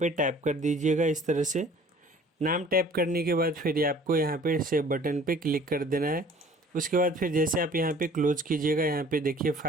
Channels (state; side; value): normal; both; correlation 0.51